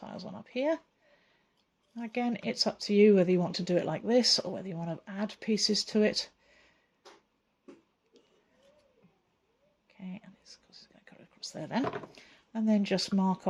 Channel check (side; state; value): both; identical; correlation 1.00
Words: on up here. Again, it's up to you whether you want to do it like this or whether you want to add pieces to it. Okay, and it's going to cut across there then. And then just mark